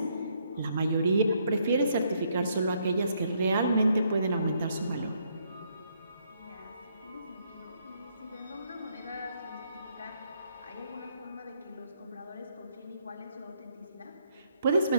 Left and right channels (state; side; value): inverted; both; correlation -0.72